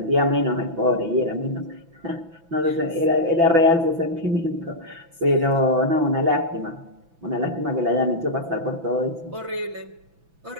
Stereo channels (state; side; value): late; left; 6.0 ms